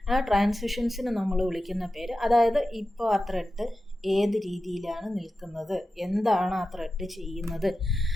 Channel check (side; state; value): both; normal; correlation 0.93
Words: ആ ട്രാൻസിഷൻസിന് നമ്മൾ വിളിക്കുന്ന പേര്, അതായത് ഇപ്പോൾ ആ ത്രെഡ് ഏത് രീതിയിലാണ് നിൽക്കുന്നത്, എന്താണ് ആ ത്രെഡ് ചെയ്യുന്നത്